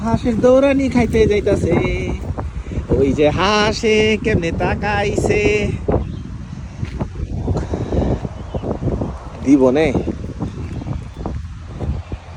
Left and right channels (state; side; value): identical; both; correlation 1.00